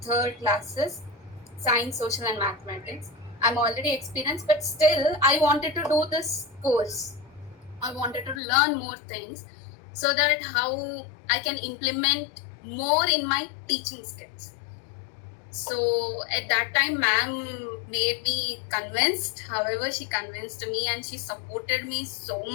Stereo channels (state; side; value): drops out; right; at 8.4 s